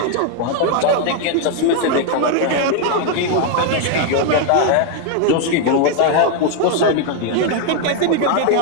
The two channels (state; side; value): different; both; correlation 0.00